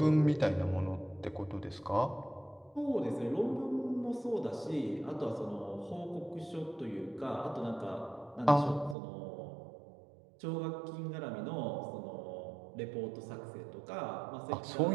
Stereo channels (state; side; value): drops out; left; at 9.0 s